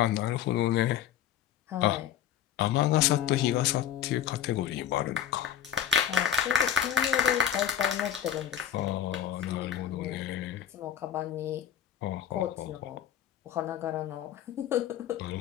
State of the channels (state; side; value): quieter; right; 10.1 dB